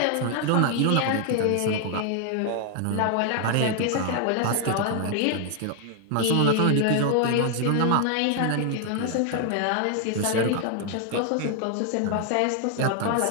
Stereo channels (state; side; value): different; both; correlation 0.00